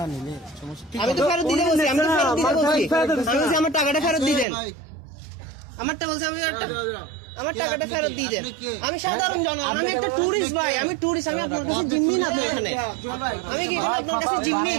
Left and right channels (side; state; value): left; drops out; at 4.5 s